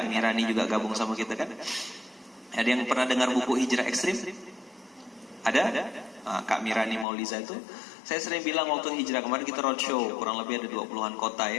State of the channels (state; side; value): drops out; right; at 7.1 s